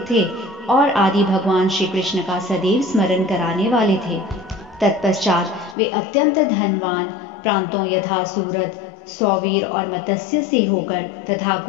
थे और आदि भगवान श्री कृष्ण का सदैव स्मरण कराने वाले थे। तत्पश्चात वे अत्यंत धनवान प्रांतों यथा सूरत, सौवीर और मत्स्य से होकर तथा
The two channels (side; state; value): right; drops out; at 5.8 s